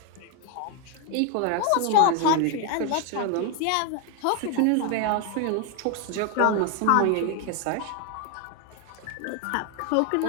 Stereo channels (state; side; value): different; both; correlation 0.01